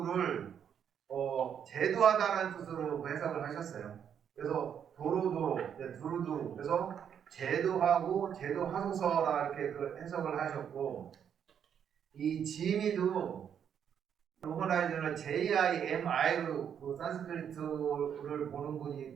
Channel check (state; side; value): quieter; left; 8.3 dB